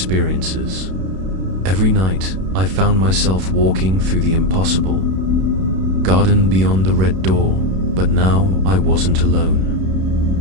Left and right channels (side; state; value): left; late; 32 ms